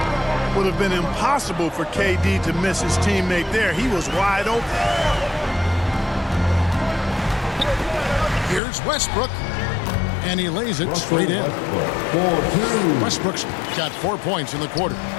Would have been impossible for KD to miss his teammate there. He was wide open. Here's Westbrook. And he lays it straight in. Westbrook's got 4 points in the quarter.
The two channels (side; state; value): right; drops out; at 8.6 s